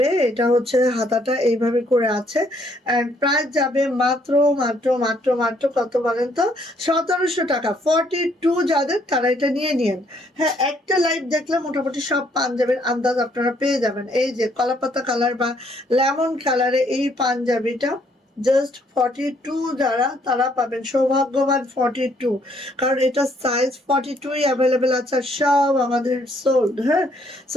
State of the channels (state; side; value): normal; both; correlation 0.68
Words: এটা হচ্ছে হাতাটা এইভাবে করে আছে, অ্যান্ড প্রাইস যাবে মাত্র মাত্র মাত্র মাত্র কত বলেন তো, 1700 টাকা। 42 যাদের তারা এটা নিয়ে নিন। হ্যাঁ একটা লাইভ দেখলে মোটামুটি সব পাঞ্জাবির আন্দাজ আপনারা পেয়ে যাবেন। এই যে কলাপাতা কালার বা লেমন কালারে এই পাঞ্জাবিটা জাস্ট 42 যারা তারা পাবেন, সৌভাগ্যবান 42, কারণ এটা সাইজ 42 অ্যাভেলেবেল আছে, সব আমাদের সোল্ড। হ্যাঁ